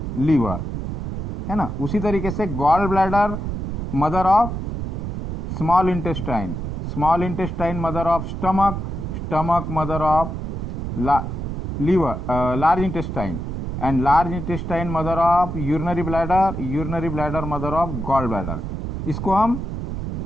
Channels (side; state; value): right; noise; rumble, 4 dB below the sound